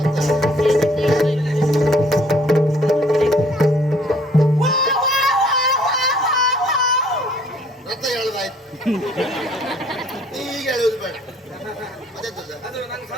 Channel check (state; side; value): normal; both; correlation 0.60